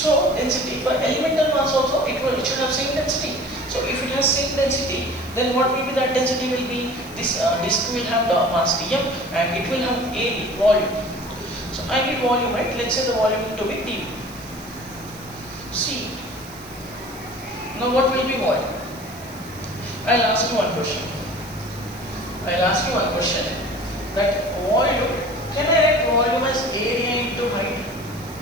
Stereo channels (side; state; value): right; noise; hiss, 20 dB below the sound